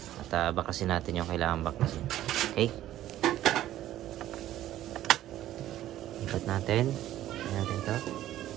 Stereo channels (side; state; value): left; quieter; 13.3 dB